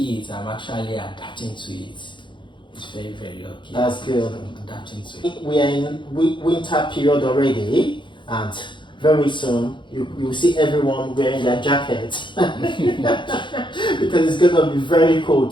I'm actually adapting to it. It's very, very okay. That's good. I'm adapting to it. We are in winter period already, and very soon you will see everyone wearing their jackets because it's gonna be very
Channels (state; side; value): late; right; 0.23 ms